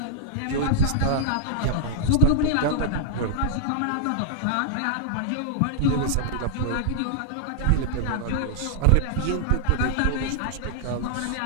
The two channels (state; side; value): different; both; correlation -0.01